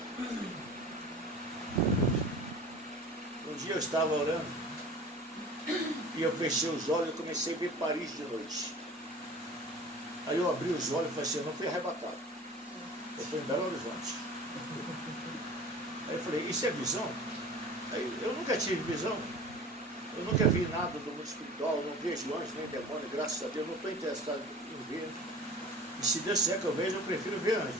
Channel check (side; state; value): both; normal; correlation 0.41